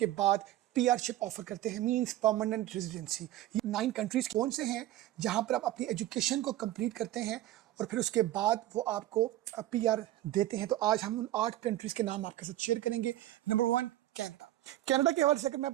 बाद पीआरशिप ऑफर करते हैं, मींस परमानेंट रेजिडेंसी। ये 9 कंट्रीज़ कौन से हैं जहां पर आप अपनी एजुकेशन को कंप्लीट करते हैं और फिर उसके बाद वो आपको पीआर देते हैं। तो आज हम उन 8 कंट्रीज़ के नाम आपके साथ शेयर करेंगे। Number 1, Canada. कनाडा के हवाले से अगर मैं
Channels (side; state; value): left; quieter; 14.4 dB